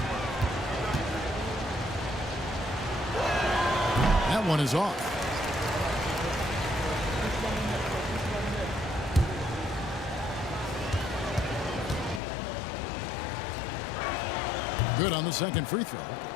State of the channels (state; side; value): drops out; right; at 12.2 s